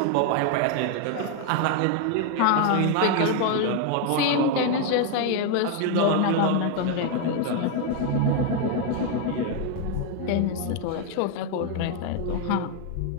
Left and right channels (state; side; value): different; both; correlation 0.01